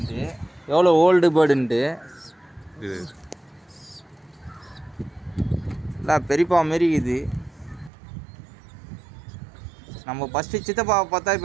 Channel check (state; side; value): drops out; left; at 7.9 s